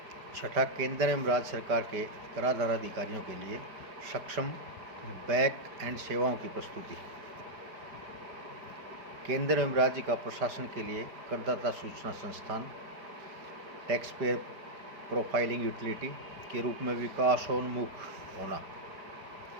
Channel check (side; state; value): left; late; 5.0 ms